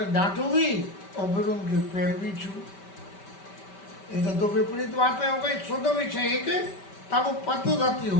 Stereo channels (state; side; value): late; right; 5.2 ms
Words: डांटू भी और फिर उनके पैर भी छू। ये तो दो विपरीत बातें हो गई। शुद्ध विषय एक, तब पद रति